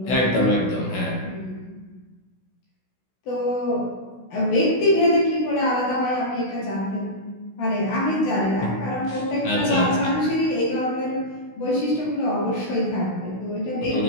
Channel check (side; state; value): right; late; 16 ms